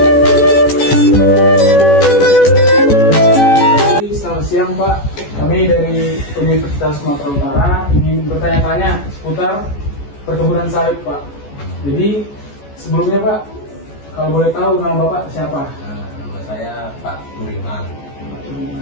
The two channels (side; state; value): right; late; 14 ms